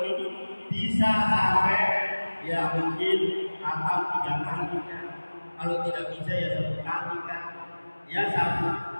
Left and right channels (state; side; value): inverted; both; correlation -1.00